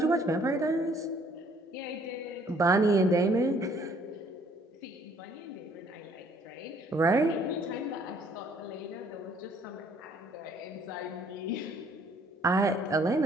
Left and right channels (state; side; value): normal; both; correlation 0.61